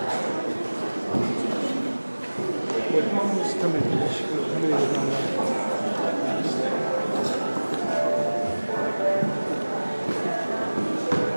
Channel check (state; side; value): inverted; both; correlation -1.00